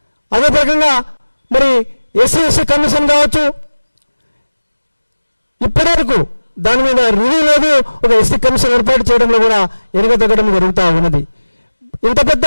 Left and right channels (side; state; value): both; inverted; correlation -1.00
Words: అదే రకంగా మరి ఎస్సీ కమిషన్ కావచ్చు, ఇప్పటివరకు దాని మీద రివ్యూ లేదు. ఒక ఎస్సీ కమిషన్ ఏర్పాటు చేయడంలో కూడా ఎరగతగ్గడం జరుగుతూ ఉన్నది. ఇంత